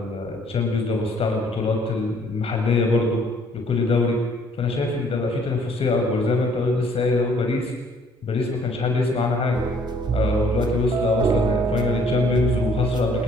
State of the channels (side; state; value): both; normal; correlation 0.61